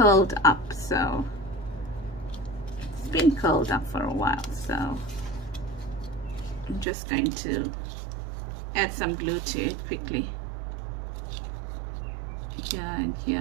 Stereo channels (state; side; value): drops out; left; at 6.9 s